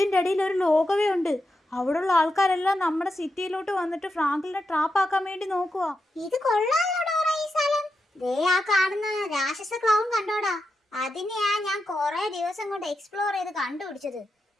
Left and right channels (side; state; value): both; normal; correlation 0.87